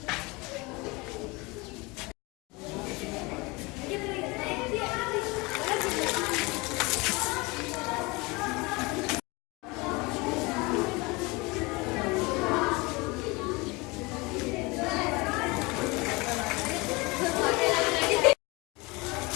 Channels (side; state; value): right; quieter; 25.2 dB